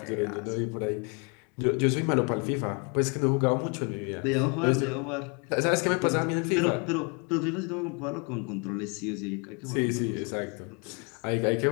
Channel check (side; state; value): right; quieter; 34.0 dB